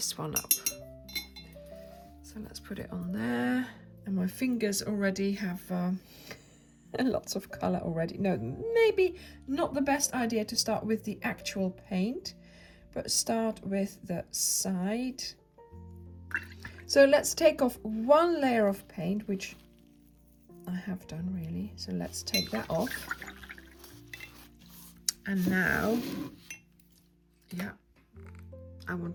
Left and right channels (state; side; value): identical; both; correlation 1.00